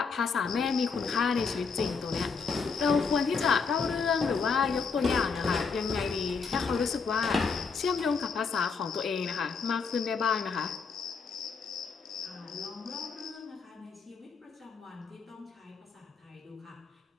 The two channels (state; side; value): quieter; right; 5.2 dB